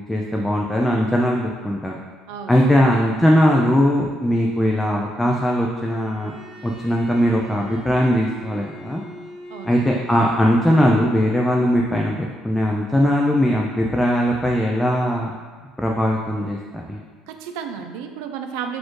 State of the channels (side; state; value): both; normal; correlation 0.85